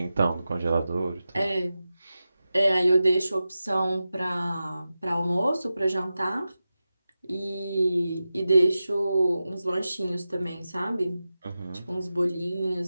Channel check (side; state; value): both; inverted; correlation -0.93